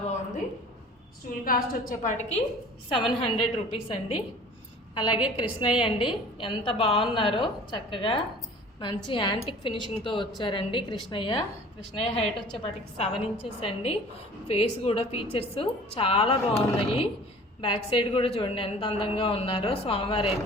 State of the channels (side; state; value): both; normal; correlation 0.46